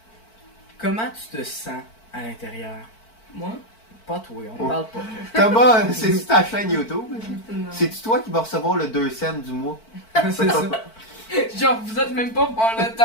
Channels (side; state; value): right; late; 4.5 ms